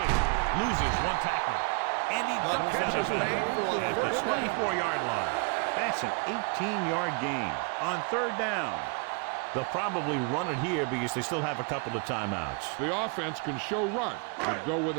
Loses one tackler. And he ducks out of bounds at the 24-yard line. That's an 18-yard gain on 3rd down. They'll probably run it here because they still have a couple of timeouts. The offense can show run, but go with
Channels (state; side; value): quieter; left; 35.4 dB